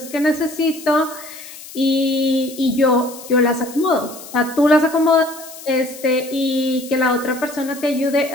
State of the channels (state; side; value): noise; left; hiss, 16 dB below the sound